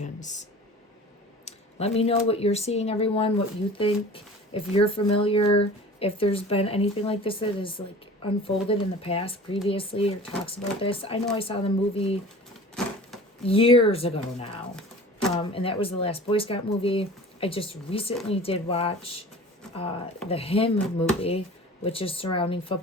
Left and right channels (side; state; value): both; normal; correlation 0.41